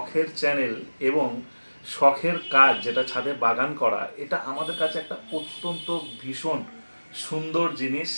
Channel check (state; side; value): inverted; both; correlation -1.00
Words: চ্যানেল এবং শখের কাজ, যেটা ছাদে বাগান করা, এটা আমাদের কাছে একটা অত্যন্ত ভীষণ সুন্দর জিনিস